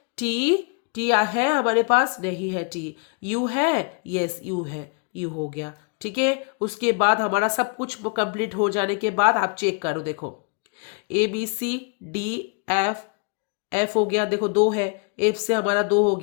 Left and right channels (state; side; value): quieter; right; 36.4 dB